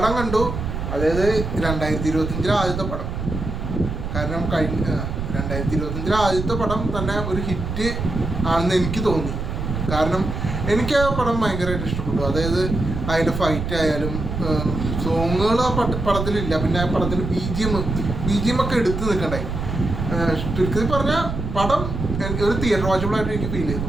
കണ്ടു. അതായത് 2025 ആദ്യത്തെ പടം. കാരണം 2025 ആദ്യത്തെ പടം തന്നെ ഒരു ഹിറ്റ് ആണെന്ന് എനിക്ക് തോന്നി. കാരണം എനിക്ക് ആ പടം ഭയങ്കരമായിട്ട് ഇഷ്ടപ്പെട്ടു. അതായത് അതിൻ്റെ ഫൈറ്റ് ആയാലും സോങ്ങുകൾ ആ പടത്തിലില്ല. പിന്നെ ആ പടത്തിൽ ബി ജി എം ഒക്കെ എടുത്ത് നിൽക്കണ്ടായി. ചുരുക്കത്തിൽ പറഞ്ഞാൽ പടം ഒരു തിയേറ്റർ വാച്ചബിളായിട്ട് എനിക്ക് ഫീൽ ചെയ്തു.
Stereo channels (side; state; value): right; noise; rumble, 4 dB below the sound